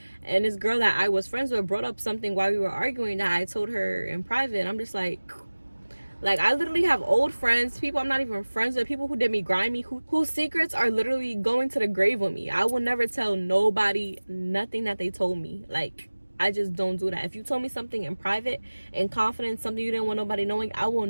and this girl that I was friends with brought up something while we were arguing that I told her in private, and I'm just like, I literally have old friends, people I'm not even friends with, people who did me grimy, whose secrets are literally going to the grave with me. I will never tell nobody nothing that they told me. Like, I just don't do that. If you told me something in private, in confidence, something you didn't want nobody knowing, I will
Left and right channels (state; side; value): inverted; both; correlation -1.00